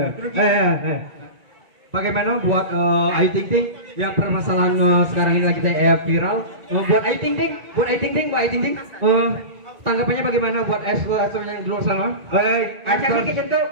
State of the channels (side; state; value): left; late; 1.9 ms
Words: Bagaimana buat Ayu Ting Ting yang permasalahan sekarang ini lagi viral? Buat Ayu Ting Ting, buat Ayu Ting Ting, buat Ayu Ting Ting. Tanggapannya bagaimana buat yang di luar sana? Kaca dikit jentuh.